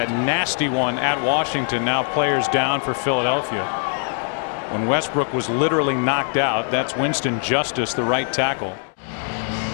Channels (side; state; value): right; silent; 55 dB below the other